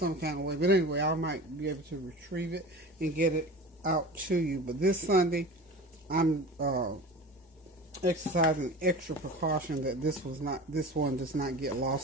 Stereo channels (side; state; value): both; normal; correlation 0.35